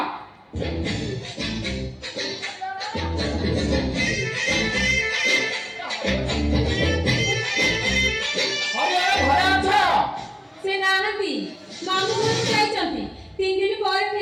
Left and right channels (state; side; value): identical; both; correlation 1.00